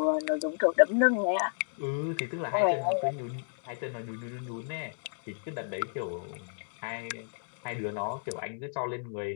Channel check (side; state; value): right; silent; digital silence